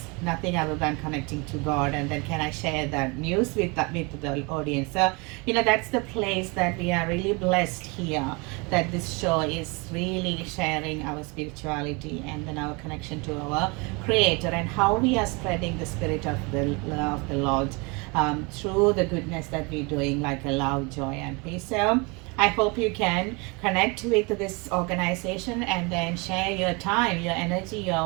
nothing other than connecting to God, and then can I share that news with the audience? So that's the place that we are really blessed here, that this show is really sharing our spirituality and then our connection to our Creator, and how we are spreading the spirit of the Lord through the goodness that we're doing, like a love, joy, and peace. So I hope you can connect with this organization and then share your time, your energy,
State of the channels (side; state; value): left; quieter; 28.8 dB